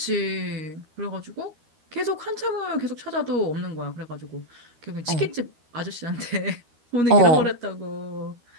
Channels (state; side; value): late; left; 13 ms